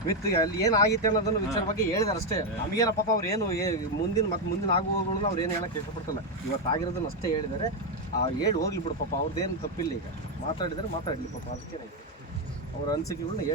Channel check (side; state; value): both; normal; correlation 0.04